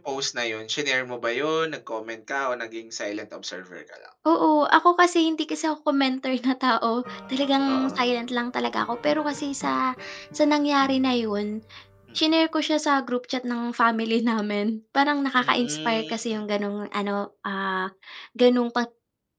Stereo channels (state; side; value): identical; both; correlation 1.00